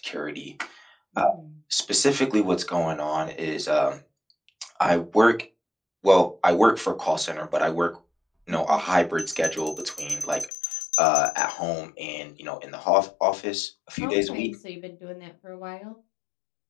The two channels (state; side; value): drops out; right; at 10.5 s